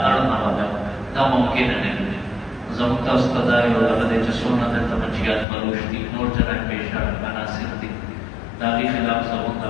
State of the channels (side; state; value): right; drops out; at 5.5 s